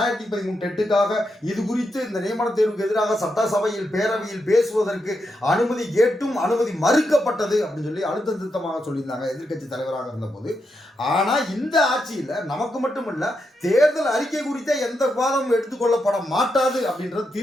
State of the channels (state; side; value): normal; both; correlation 0.84